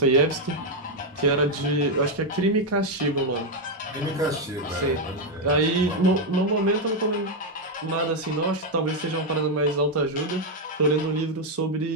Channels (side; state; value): both; normal; correlation 0.03